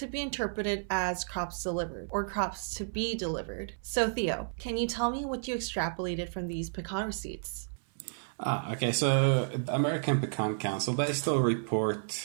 be interpreted as crops delivered or crops to be delivered. So Theo, can you tell me what you extrapolated from these pecan receipts? Okay, so the American Pecan Council, they still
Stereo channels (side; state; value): left; silent; 57 dB below the other